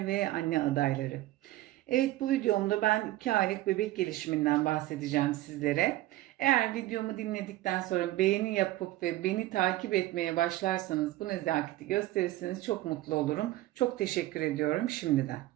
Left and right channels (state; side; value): quieter; left; 16.4 dB